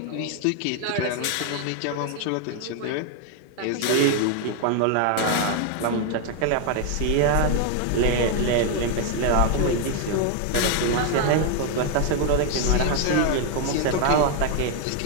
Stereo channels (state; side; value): different; both; correlation 0.01